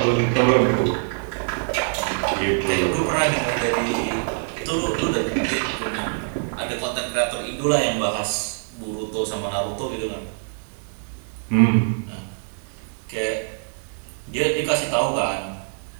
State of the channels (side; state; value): left; silent; 63 dB below the other